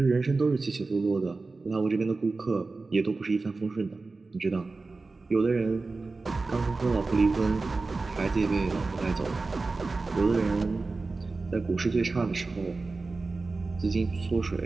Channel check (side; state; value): left; quieter; 3.7 dB